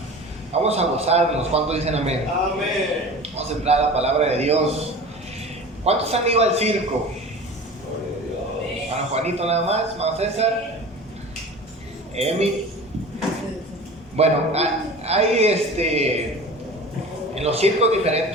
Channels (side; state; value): both; normal; correlation 0.37